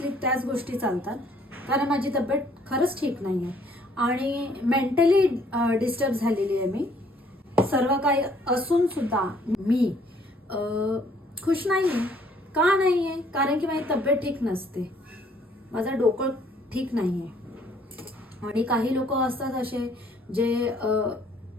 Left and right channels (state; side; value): normal; both; correlation 0.62